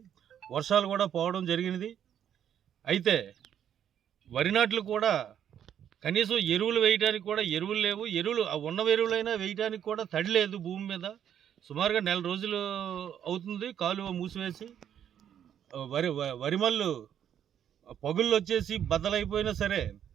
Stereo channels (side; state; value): left; quieter; 9.5 dB